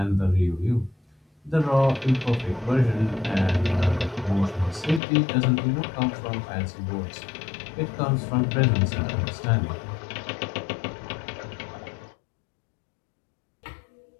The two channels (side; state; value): right; drops out; at 5.0 s